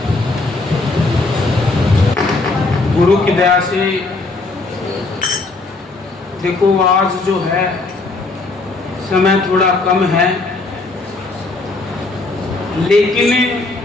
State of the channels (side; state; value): right; quieter; 3.4 dB